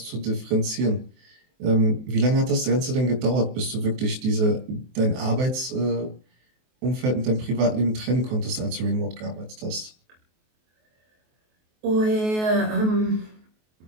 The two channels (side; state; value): left; late; 23 ms